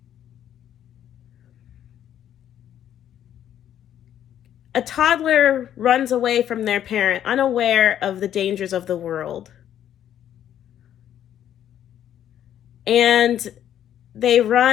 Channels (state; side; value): quieter; right; 10.6 dB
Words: A toddler runs away from their parent, unaware of the dangers of the world. And they